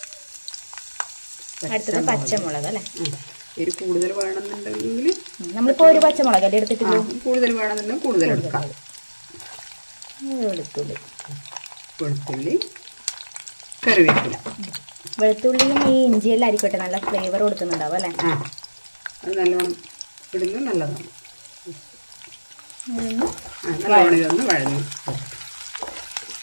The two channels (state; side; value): inverted; both; correlation -1.00